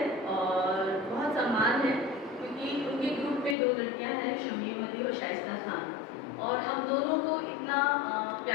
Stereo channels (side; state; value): right; drops out; at 3.6 s